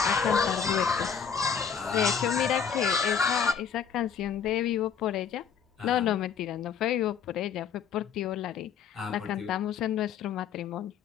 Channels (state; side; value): quieter; right; 7.2 dB